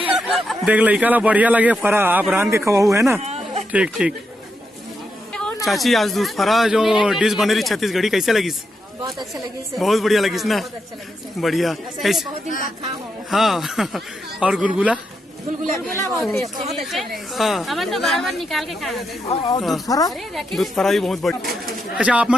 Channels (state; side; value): normal; both; correlation 0.84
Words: देख लड़का ला बढ़िया लगे फरा आप रांध के खवाऊ है ना ठीक ठीक। चाची आज दूध फरा जो डिश बने रही छत्तीसगढ़ी कैसे लगी बहुत अच्छा लगी से। बहुत बढ़िया लगी ना बढ़िया कैसे बहुत दिन बाद खा हो। हाँ और गुलगुला गुलगुला बहुत अच्छा है। हाँ हमन तो बार बार निकाल के खाए। दूध फरा भी बहुत बढ़िया। अच्छा आप